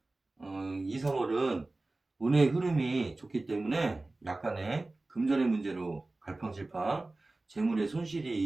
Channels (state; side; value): quieter; left; 3.0 dB